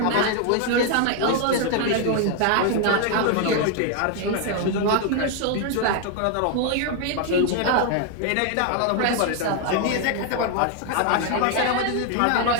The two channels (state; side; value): different; both; correlation 0.00